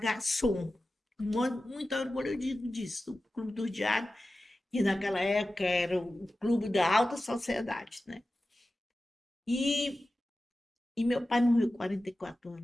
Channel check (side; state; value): both; normal; correlation 0.94